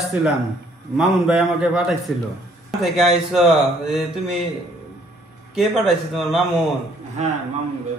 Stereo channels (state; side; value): normal; both; correlation 0.63